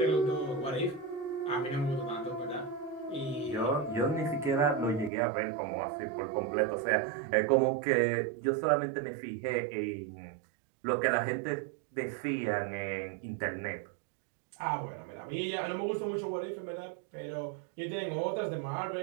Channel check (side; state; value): left; drops out; at 5.1 s